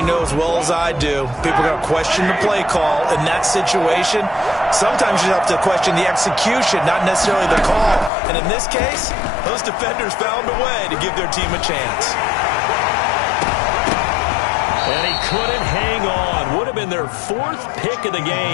know as well as I do, people are going to question the play call in that situation. Sometimes you have to question the execution, not necessarily the call. And in this case, those defenders found a way to give their team a chance. And he couldn't hang on. Would have been their 4th pick of the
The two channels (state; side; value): drops out; right; at 8.1 s